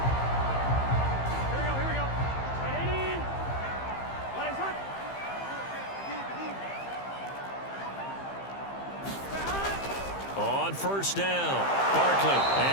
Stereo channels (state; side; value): late; right; 15 ms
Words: On first down, Barkley,